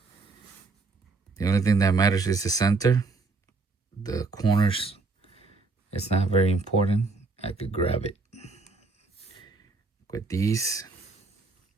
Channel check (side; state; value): left; quieter; 3.8 dB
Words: the only thing that matters is the center. The corners, it's not very important. I could grab it with these